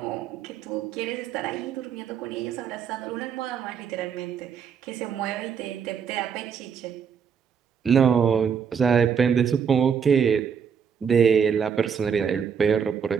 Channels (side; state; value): left; quieter; 7.0 dB